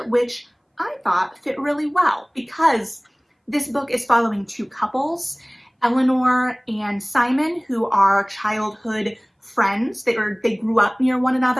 which I thought fit really well because this book is following two couples, Eleanor and Simon, who are childhood friends. They grew up near one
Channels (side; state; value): both; identical; correlation 1.00